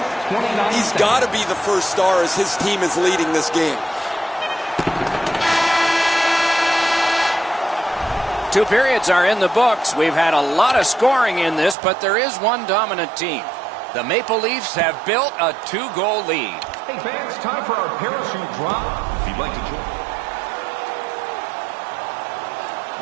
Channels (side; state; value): left; drops out; at 11.8 s